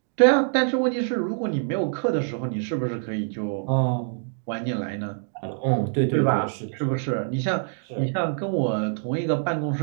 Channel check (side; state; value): left; silent; 62 dB below the other